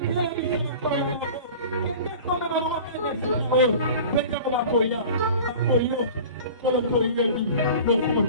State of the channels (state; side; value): inverted; both; correlation -0.40